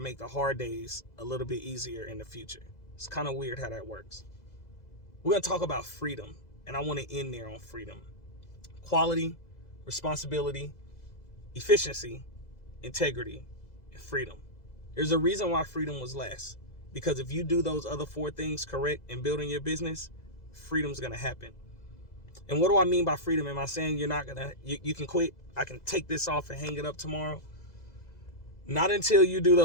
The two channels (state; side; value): late; right; 2.0 ms